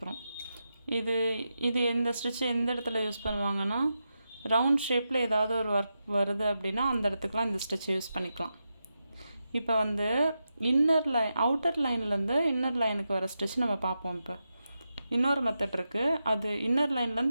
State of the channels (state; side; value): inverted; both; correlation -0.89